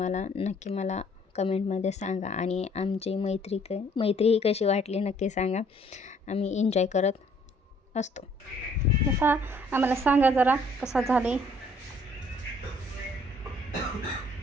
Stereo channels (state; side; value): normal; both; correlation 0.61